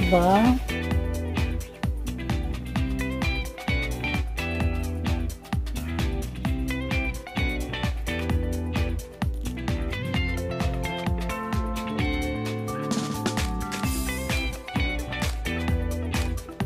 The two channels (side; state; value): both; identical; correlation 1.00